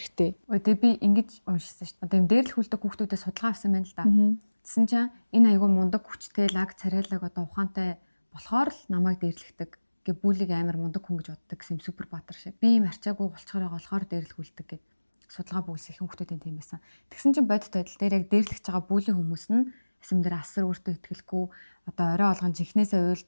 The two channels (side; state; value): both; inverted; correlation -1.00